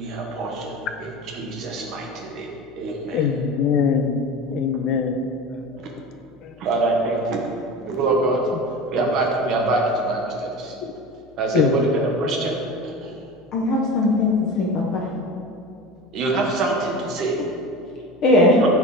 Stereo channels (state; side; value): noise; left; hum, 28 dB below the sound